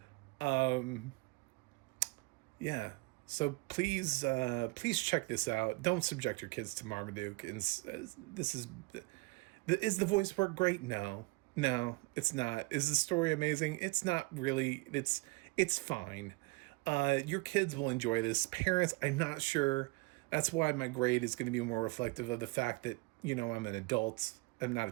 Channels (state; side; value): quieter; left; 25.5 dB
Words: yeah. So please check this out. Don't subject your kids to Marmaduke. Is the voice work great? No, it's not. Is the story amazing? It's not really. It's fine. Your kids will enjoy this. Parents, I'm not sure. That's why my grade is going to be more reflective of the fact that, I'm an adult. I'm not a